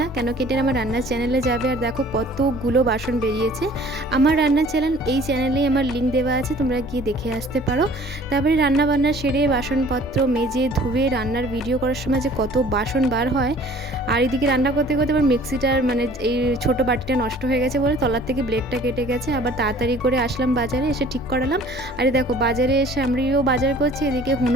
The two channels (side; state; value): both; normal; correlation 0.51